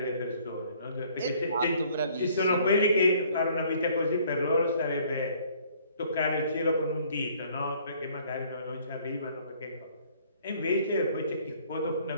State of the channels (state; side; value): inverted; both; correlation -0.59